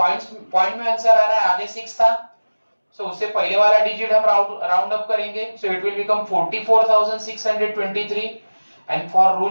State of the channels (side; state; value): both; inverted; correlation -1.00